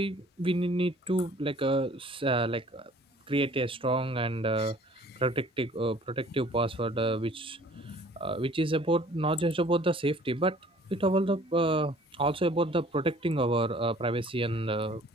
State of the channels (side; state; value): both; normal; correlation 0.53